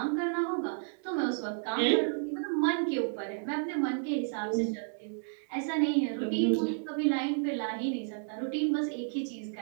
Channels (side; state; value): left; silent; digital silence